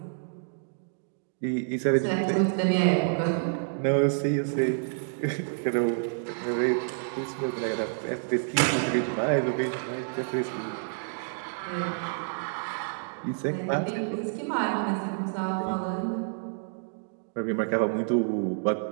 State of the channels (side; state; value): left; silent; digital silence